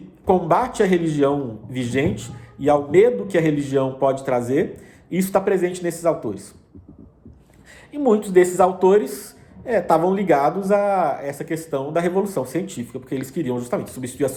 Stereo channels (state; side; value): identical; both; correlation 1.00